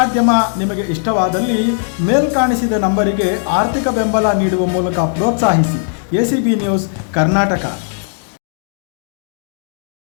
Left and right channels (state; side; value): silent; right; digital silence